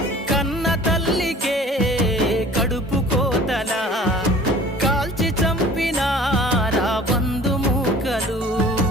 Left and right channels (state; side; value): normal; both; correlation 0.47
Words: కన్న తల్లికే కడుపు కోతలా కాల్చి చంపినారా బంధుమూకలు